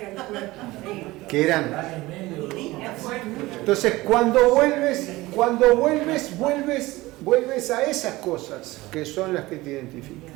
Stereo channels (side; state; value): left; quieter; 19.5 dB